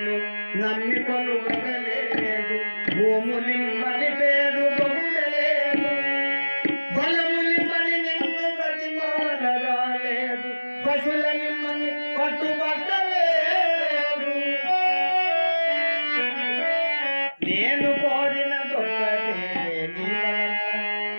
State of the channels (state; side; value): inverted; both; correlation -1.00